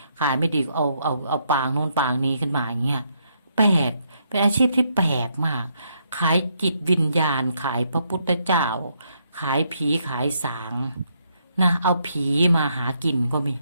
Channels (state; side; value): inverted; both; correlation -0.75